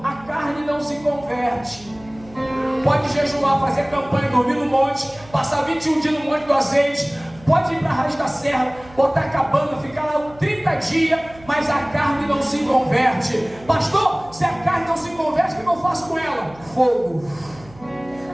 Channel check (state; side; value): noise; right; hum, 22 dB below the sound